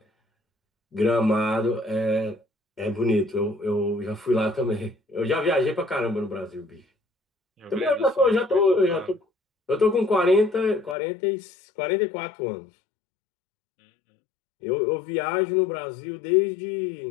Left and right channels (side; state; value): right; drops out; at 11.0 s